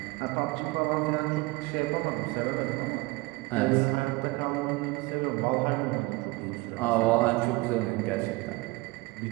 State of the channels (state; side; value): quieter; left; 23.2 dB